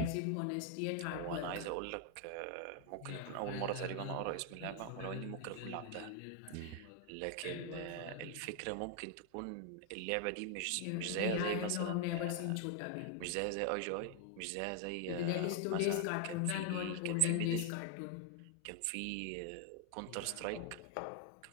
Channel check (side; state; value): both; different; correlation 0.00